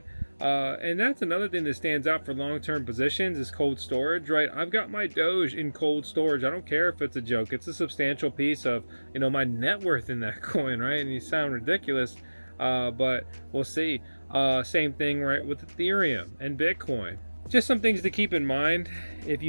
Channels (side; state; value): both; inverted; correlation -1.00